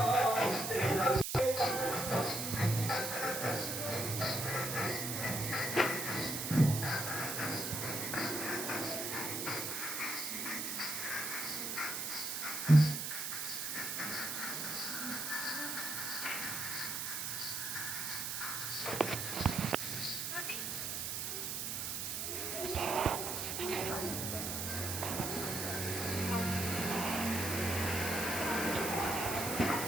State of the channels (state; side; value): noise; right; hiss, 3 dB below the sound